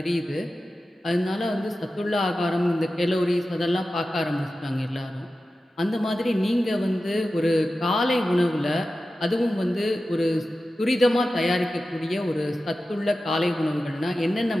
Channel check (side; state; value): both; normal; correlation 0.93